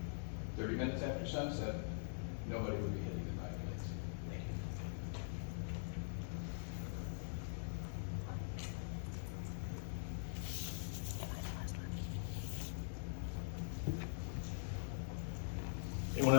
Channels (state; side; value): silent; right; digital silence